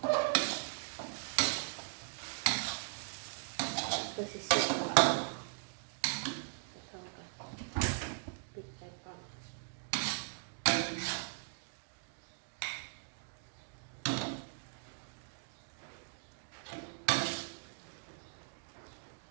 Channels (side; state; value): left; silent; digital silence